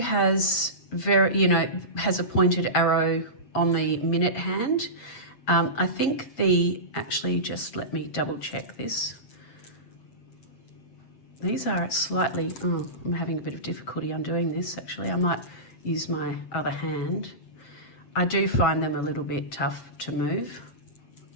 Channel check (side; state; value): right; late; 7.6 ms